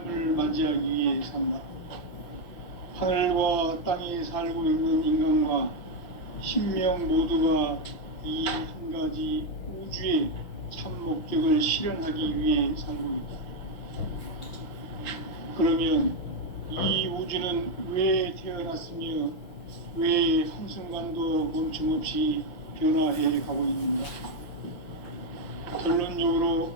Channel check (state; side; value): late; right; 6.1 ms